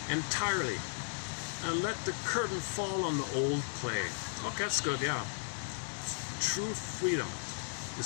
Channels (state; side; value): silent; right; 54 dB below the other